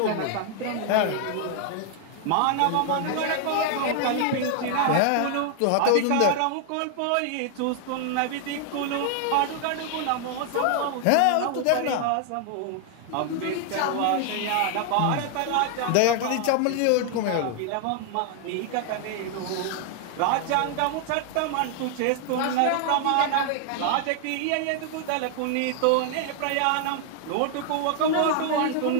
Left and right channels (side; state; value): both; different; correlation 0.00